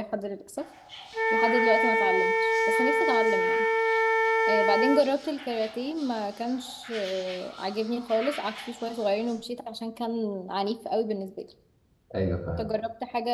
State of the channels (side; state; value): both; identical; correlation 1.00